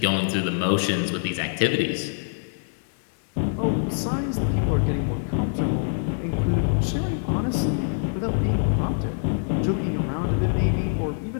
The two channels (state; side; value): silent; right; digital silence